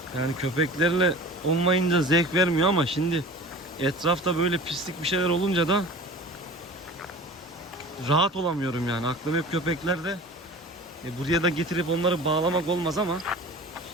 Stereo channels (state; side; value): normal; both; correlation 0.39